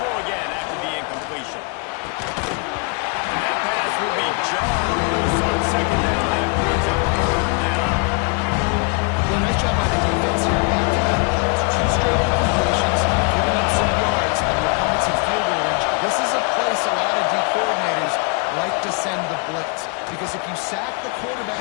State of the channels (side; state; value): right; quieter; 33.2 dB